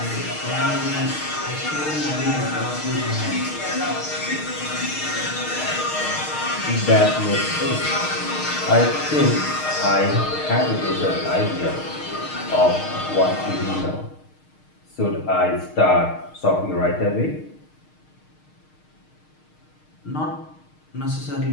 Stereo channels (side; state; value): right; late; 6.5 ms